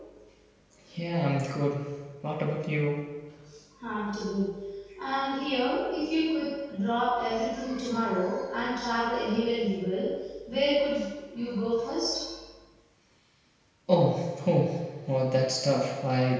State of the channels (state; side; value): identical; both; correlation 1.00